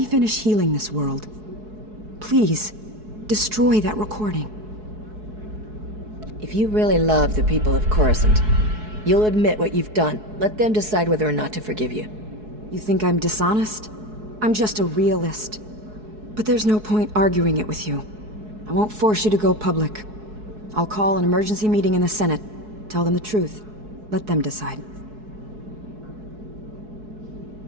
finish healing this world. Please, destroy that recording. If you really love the people of Coruscant, you'll admit what you've done. Let them decide whether or not to forgive you. You think I'm dishonest? I'm just a realist. But there's no point arguing it with you. I won't force you to go public. I'll call an emergency meeting in the Senate. Tell them the truth. Let them decide.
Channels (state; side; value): late; left; 4.7 ms